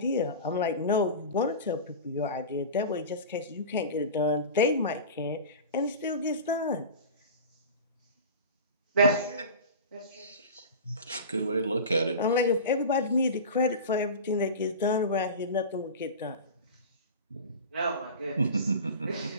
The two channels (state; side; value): inverted; both; correlation -0.31